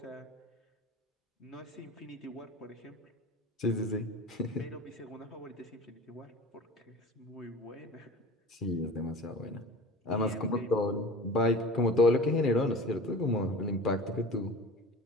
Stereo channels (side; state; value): both; normal; correlation 0.37